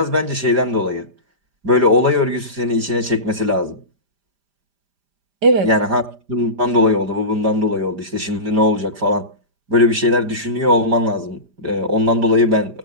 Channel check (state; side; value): late; left; 5.0 ms